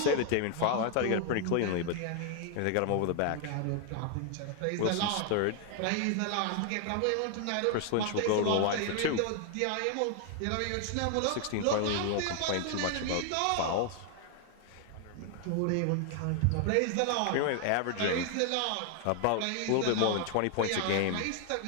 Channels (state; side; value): different; both; correlation 0.00